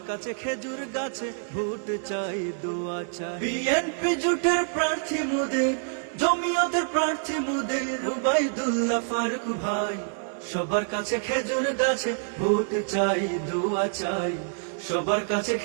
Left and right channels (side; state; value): left; silent; digital silence